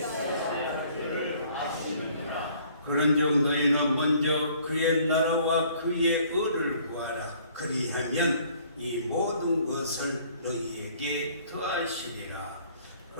를 아시느니라. 그런즉 너희는 먼저 그의 나라와 그의 의를 구하라. 그리하면 이 모든 것을 너희에게 더하시리라.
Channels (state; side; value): inverted; both; correlation -0.58